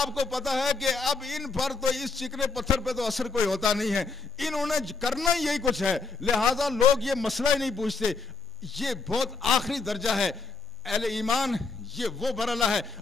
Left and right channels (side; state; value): right; quieter; 4.1 dB